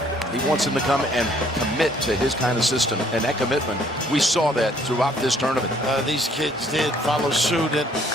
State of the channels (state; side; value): normal; both; correlation 0.62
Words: He wants him to come and commit to his kind of system, and that commitment, we saw that throughout this tournament. These kids did follow suit,